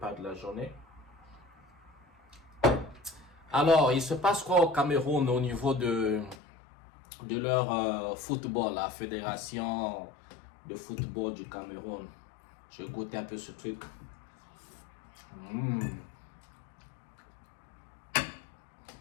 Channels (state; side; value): drops out; right; at 6.4 s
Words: de la journée. Alors, il se passe quoi au Cameroun au niveau de leur football, la fédération de football du Cameroun? Je goûte un peu ce truc.